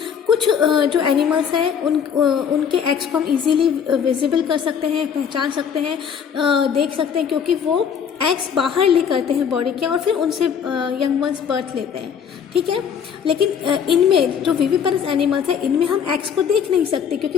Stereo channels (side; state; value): right; quieter; 7.5 dB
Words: कुछ जो एनिमल्स हैं उनके एग्स को हम इजीली विजिबल कर सकते हैं, पहचान सकते हैं, देख सकते हैं, क्योंकि वो एग्स बाहर ले करते हैं बॉडी के और फिर उनसे यंग वंस बर्थ लेते हैं, ठीक है। लेकिन इनमें जो विविपेरस एनिमल्स हैं इनमें हम एग्स को देख नहीं सकते, क्योंकि